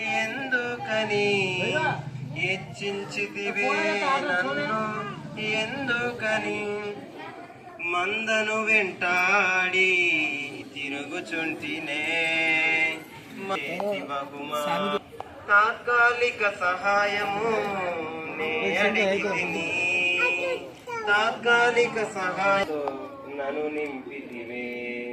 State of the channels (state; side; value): identical; both; correlation 1.00